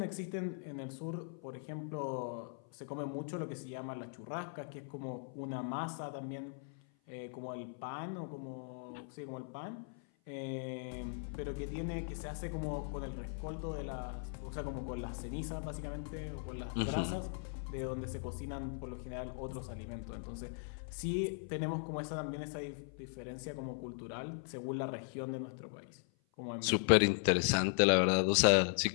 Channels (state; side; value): silent; right; 52 dB below the other